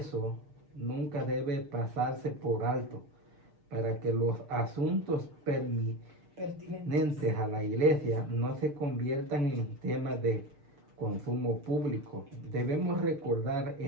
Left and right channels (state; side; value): late; left; 6.6 ms